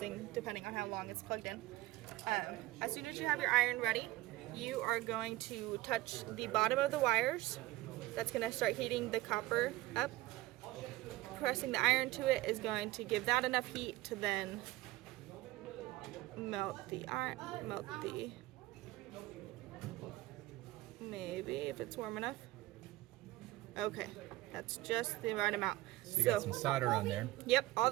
depending on how long it's plugged in. As soon as you have your iron ready, you are going to touch the bottom of the wires. That's going to start heating the copper up. Pressing the iron to it is going to give that enough heat to then melt the iron, maybe if it's warm enough. Okay, that's just the right amount. So you got some solder on there. Yep, all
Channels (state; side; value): quieter; left; 18.0 dB